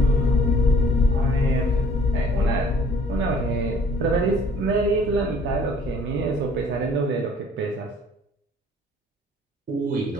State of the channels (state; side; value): normal; both; correlation 0.55